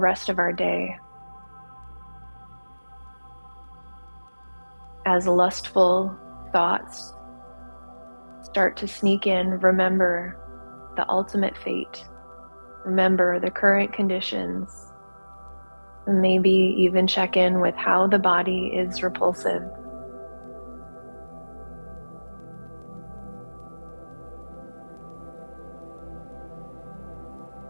of our day. As lustful thoughts start to sneak in, remember the ultimate fate. Remember the current conditions, and maybe even check in with how the body is repulsive.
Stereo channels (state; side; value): inverted; both; correlation -1.00